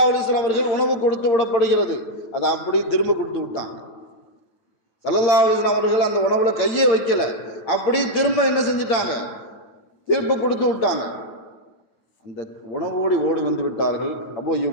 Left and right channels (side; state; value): right; late; 8.7 ms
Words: அலைஹி வஸல்லம் அவர்கள் உணவு கொடுத்து விடப்படுகிறது. அதை அப்படி திரும்ப கொடுத்து விட்டாங்க. ஸல்லல்லாஹு அலைஹி வஸல்லம் அவர்கள் அந்த உணவுல கையே வைக்கல, அப்படி திரும்ப என்ன செஞ்சிட்டாங்க, திரும்ப கொடுத்து விட்டாங்க. அந்த உணவோடு ஓடி வந்து விட்டார்கள் அபூ